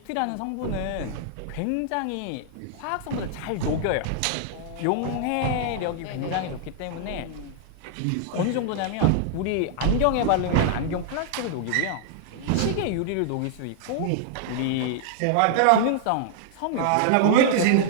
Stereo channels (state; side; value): different; both; correlation 0.00